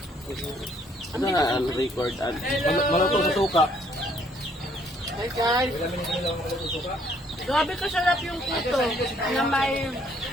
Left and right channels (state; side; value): normal; both; correlation 0.65